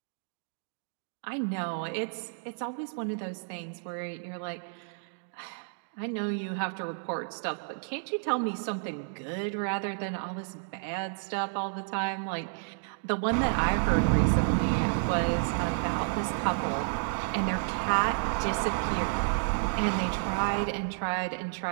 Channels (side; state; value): left; silent; digital silence